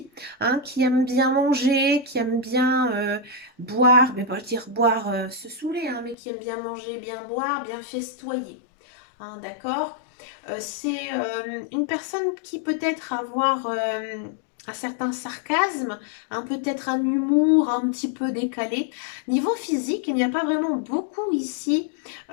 hein, qui aime bien manger, qui aime bien boire, mais pas dire boire, se saouler, hein, mais qui aime bien manger, bien boire, bien festoyer, hein, d'accord? C'est une personne qui peut-être avoir un certain sarcasme, peut-être un humour un petit peu décalé. Niveau physique, il n'y a pas vraiment beaucoup ici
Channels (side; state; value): right; drops out; at 6.2 s